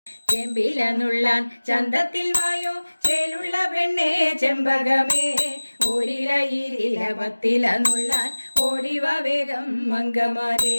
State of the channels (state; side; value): inverted; both; correlation -1.00